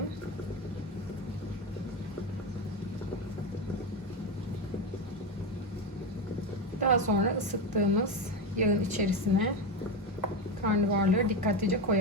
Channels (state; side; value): normal; both; correlation 0.15